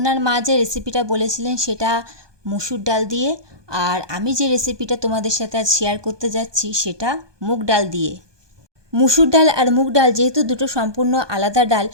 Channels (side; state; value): left; late; 1.2 ms